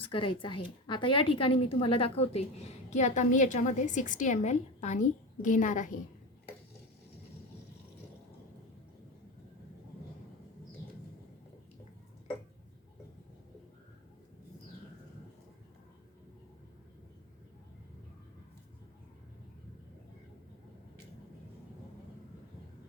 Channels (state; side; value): normal; both; correlation 0.23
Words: करायचा आहे. आता या ठिकाणी मी तुम्हाला दाखवते की आता मी याच्यामध्ये 60 ml पाणी घेणार आहे.